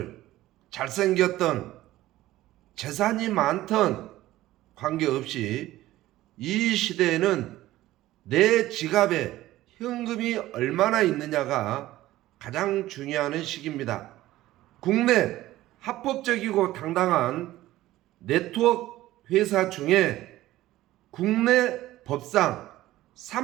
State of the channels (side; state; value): left; quieter; 15.8 dB